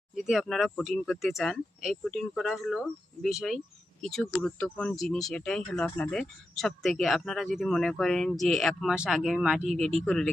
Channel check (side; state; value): both; normal; correlation 0.89